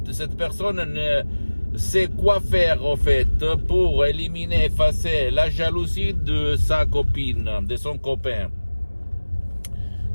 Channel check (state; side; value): inverted; both; correlation -1.00